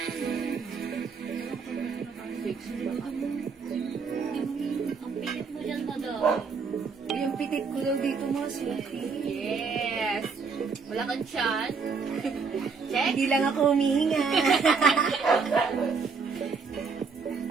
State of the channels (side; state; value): left; quieter; 5.1 dB